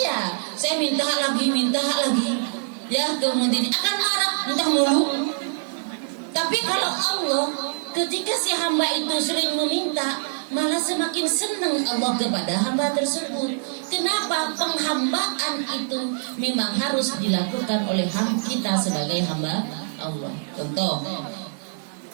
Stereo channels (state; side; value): silent; left; digital silence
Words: saya minta lagi. Ya, kemudian akan marah, minta mulu. Tapi kalau Allah, ketika si hamba itu sering meminta, malah semakin senang Allah kepada hamba tersebut. Kenapa? Penghambaan itu memang harus dilakukan oleh kita sebagai hamba Allah. Contoh,